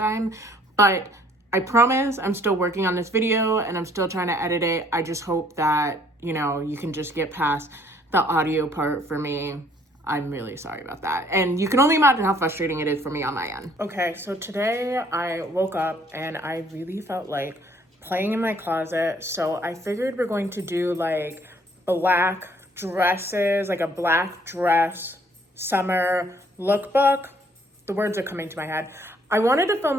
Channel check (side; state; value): both; normal; correlation 0.62